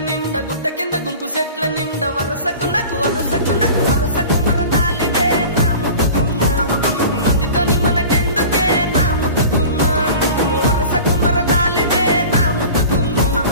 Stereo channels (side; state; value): both; inverted; correlation -0.39